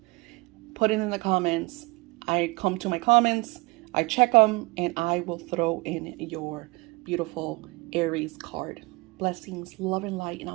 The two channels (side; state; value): left; quieter; 25.7 dB